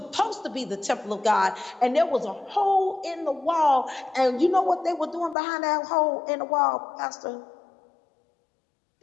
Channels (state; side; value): drops out; right; at 5.4 s